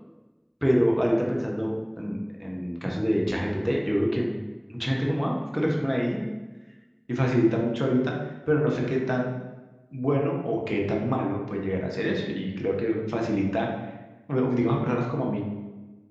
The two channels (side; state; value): both; identical; correlation 1.00